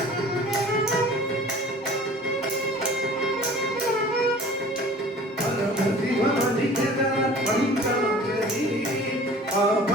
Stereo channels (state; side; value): normal; both; correlation 0.45